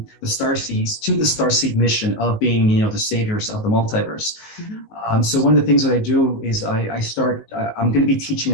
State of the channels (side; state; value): right; late; 19 ms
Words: the starseeds to the starseed mission of being, the saviors of the multiverse. Mm-hmm. So one of the things that I do is I'm going to be teaching